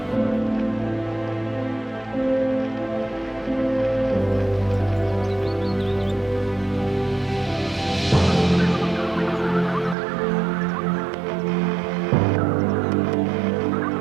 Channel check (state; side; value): drops out; left; at 10.0 s